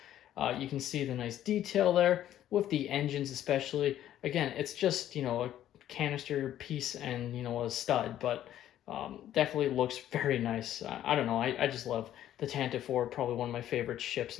You can see the nice detail there with the engines especially. Again, it's just, a canister piece and, a stud, but definitely looks very nice. I don't know, I just love the Tantive IV, probably one of my favorite ships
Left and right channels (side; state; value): right; quieter; 11.9 dB